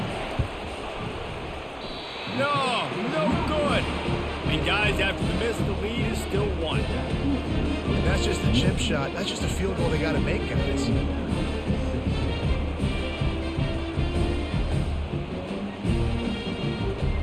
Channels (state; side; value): identical; both; correlation 1.00